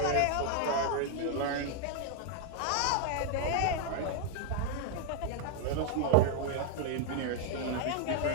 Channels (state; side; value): different; both; correlation 0.00